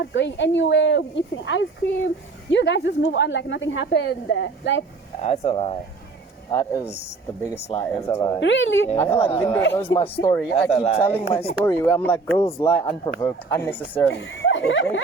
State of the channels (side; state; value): left; quieter; 4.0 dB